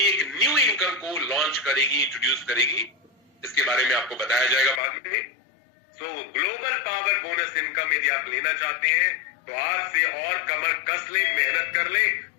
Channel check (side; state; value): right; drops out; at 4.8 s